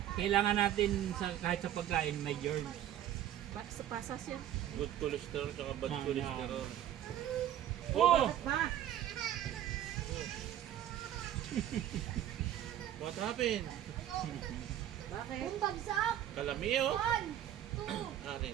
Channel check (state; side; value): quieter; left; 11.6 dB